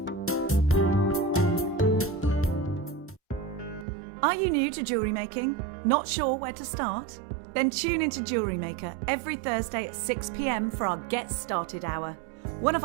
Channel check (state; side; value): drops out; left; at 3.9 s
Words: Are you new to jewellery making? Not sure where to start? Then tune into Jewellery Maker every Thursday at 6 PM for our Get Started Hour. One of